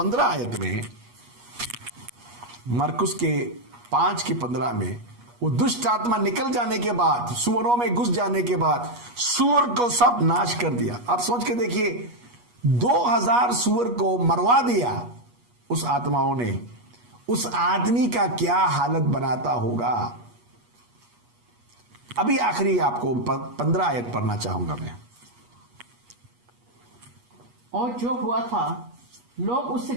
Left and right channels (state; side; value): late; left; 8.3 ms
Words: आयत में, मरकुस के 5:15 में, वो दुष्ट आत्मा निकल जाने के बाद, सूअरों में घुस जाने के बाद, सूअर को सब नाश कर दिया। आप सोच के देखिए, 2000 सूअर को मरवा दिया उस आत्माओं ने। उस आदमी का क्या हालत बनाता होगा। अभी आखिरी आपको 15 आयत पढ़ना चाहूंगा मैं। और जो हुआ था, लोग उससे